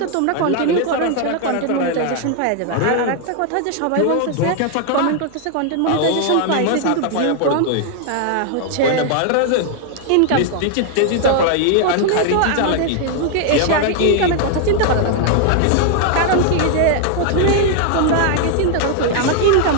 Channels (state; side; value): different; both; correlation 0.00